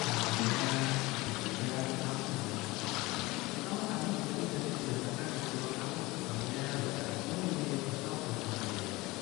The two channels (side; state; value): right; quieter; 21.6 dB